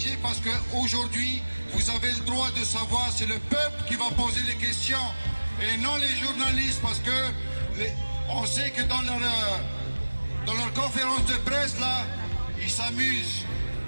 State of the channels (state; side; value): inverted; both; correlation -1.00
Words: parce qu'aujourd'hui, vous avez le droit de savoir, c'est le peuple qui va poser les questions et non les journalistes, parce que on sait que dans leur conférence de presse, là, ils s'amusent.